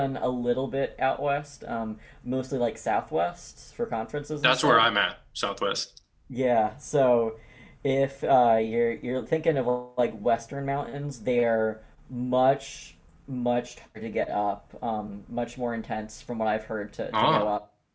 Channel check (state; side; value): identical; both; correlation 1.00